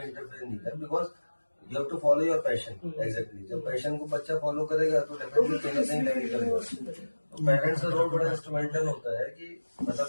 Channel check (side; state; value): both; inverted; correlation -1.00